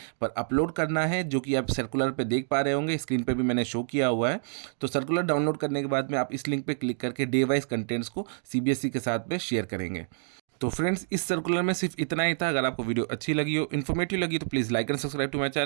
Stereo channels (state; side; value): silent; left; digital silence